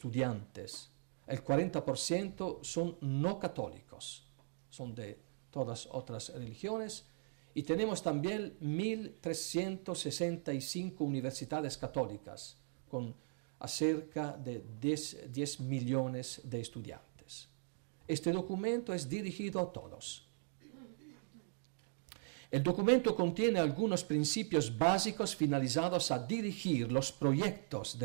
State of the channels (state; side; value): silent; left; digital silence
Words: El 40% son no católicos, son de todas otras religiones, y tenemos también 1.365 universidades católicas, con cerca de 10 millones de estudiantes. Este documento es dirigido a todos. El documento contiene algunos principios básicos finalizados a dirigir los proyectos